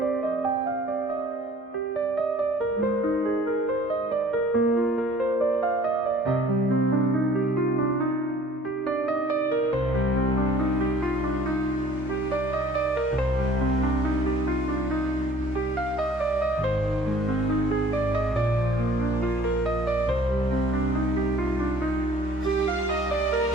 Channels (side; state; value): both; normal; correlation 0.52